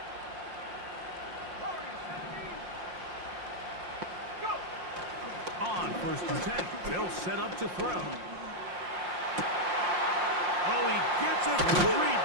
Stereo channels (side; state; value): left; late; 5.6 ms